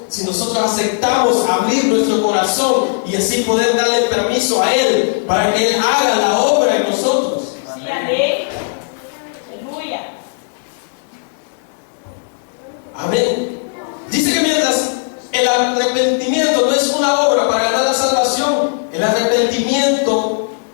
si nosotros aceptamos abrir nuestro corazón y así poder darle permiso a Él para que Él haga la obra en nosotros. Sí, amén. Aleluya. Amén. Dice que mientras el arrepentimiento no es una obra para ganar la salvación, el arrepentimiento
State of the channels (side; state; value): right; silent; 67 dB below the other